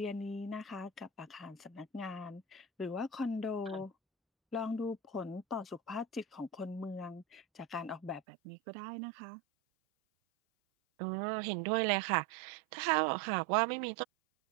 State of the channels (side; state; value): left; drops out; at 8.2 s